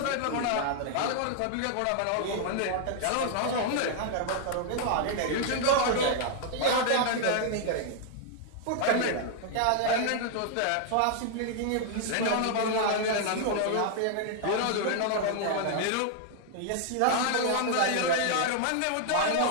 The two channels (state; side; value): different; both; correlation 0.00